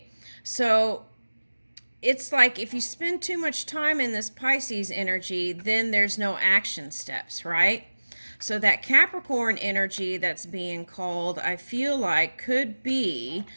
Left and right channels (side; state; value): both; inverted; correlation -1.00